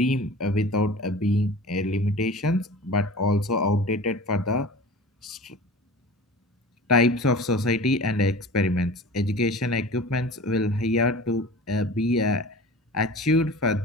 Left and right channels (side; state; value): both; normal; correlation 0.38